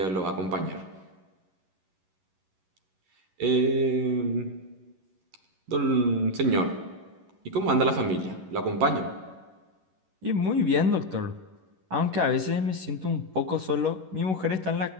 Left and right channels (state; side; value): late; left; 11 ms